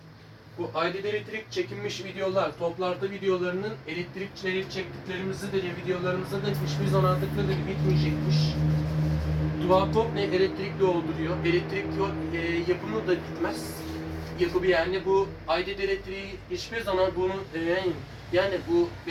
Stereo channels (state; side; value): identical; both; correlation 1.00